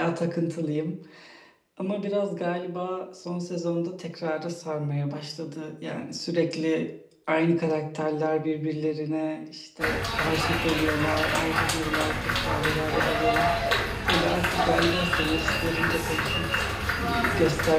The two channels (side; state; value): both; identical; correlation 1.00